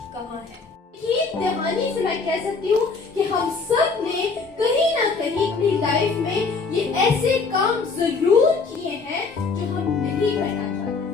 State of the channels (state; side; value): quieter; right; 4.5 dB